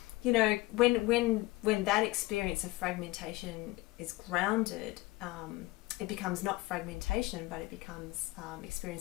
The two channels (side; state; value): right; quieter; 20.4 dB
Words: you know, when that experience of fragmentation is grounded, it becomes not fragmentation, but it becomes